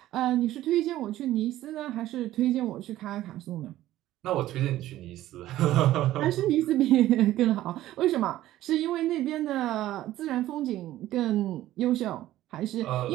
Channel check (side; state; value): left; quieter; 14.4 dB